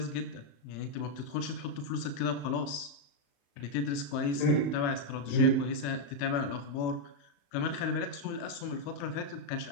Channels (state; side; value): late; right; 35 ms